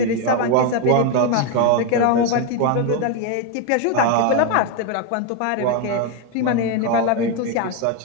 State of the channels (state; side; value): different; both; correlation 0.02